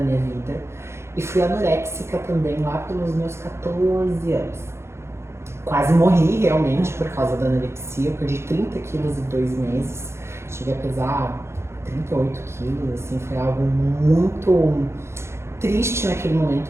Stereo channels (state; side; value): late; left; 0.13 ms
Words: minha vida, e fui anoréxica também lá pelos meus 14 anos. Quase morri realmente por causa da anorexia, eu perdi 30 quilos em 2 meses, cheguei a pesar 38 quilos, assim, foi algo muito triste naquele